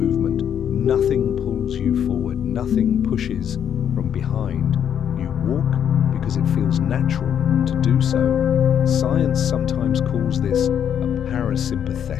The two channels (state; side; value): quieter; right; 8.9 dB